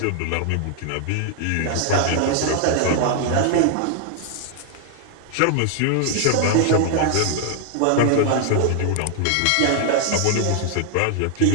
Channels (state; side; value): different; both; correlation 0.00